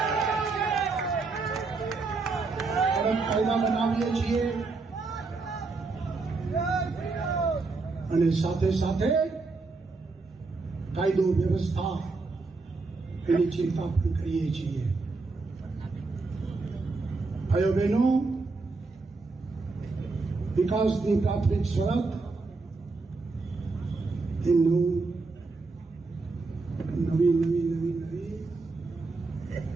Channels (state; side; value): quieter; left; 3.9 dB